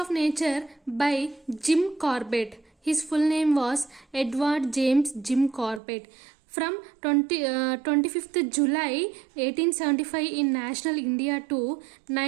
Nature by Jim Corbett. His full name was Edward James Jim Corbett. From 25th July 1875 in National India to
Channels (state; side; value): drops out; left; at 5.8 s